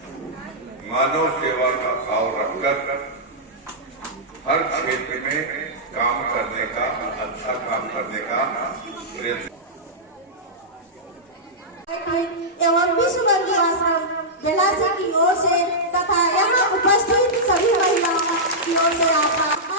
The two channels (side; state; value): both; normal; correlation -0.11